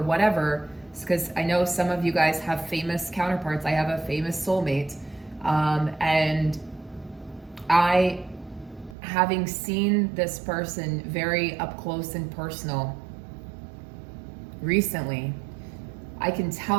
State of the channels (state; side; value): drops out; left; at 9.0 s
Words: whatever, because I know some of you guys have famous counterparts. I have a famous soulmate, and I, having seen this person very up close and personal recently, I can